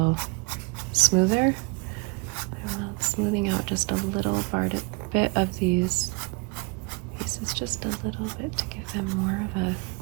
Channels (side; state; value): left; quieter; 30.4 dB